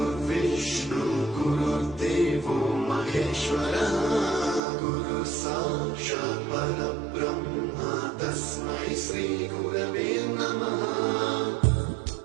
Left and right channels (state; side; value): drops out; left; at 4.6 s